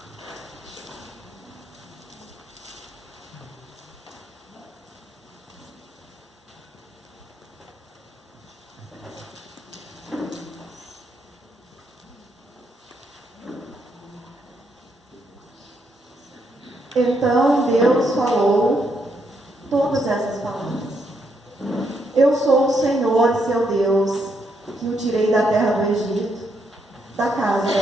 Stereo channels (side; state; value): both; normal; correlation 0.77